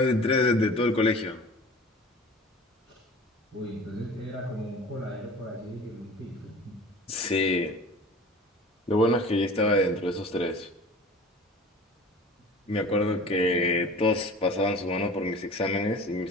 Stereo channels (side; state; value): both; normal; correlation 0.41